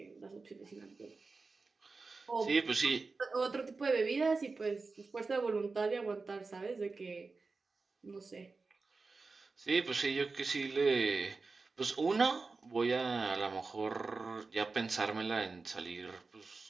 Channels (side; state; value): left; quieter; 4.0 dB